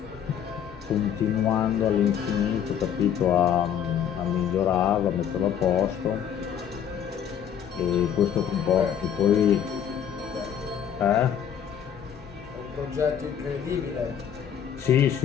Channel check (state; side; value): quieter; right; 8.9 dB